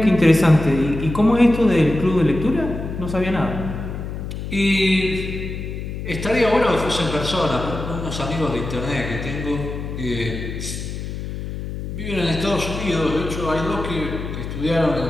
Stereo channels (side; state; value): left; noise; hum, 7 dB below the sound